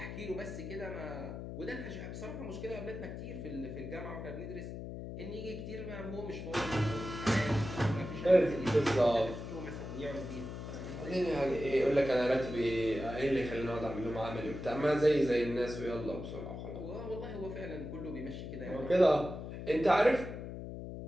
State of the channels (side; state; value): left; noise; hum, 8 dB below the sound